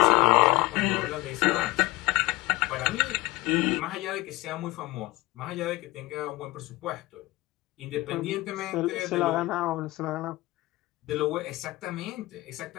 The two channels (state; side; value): quieter; right; 20.0 dB